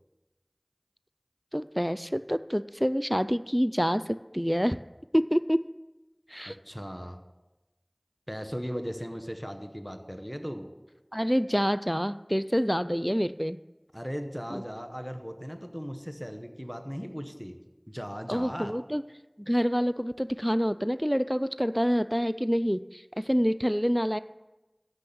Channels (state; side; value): identical; both; correlation 1.00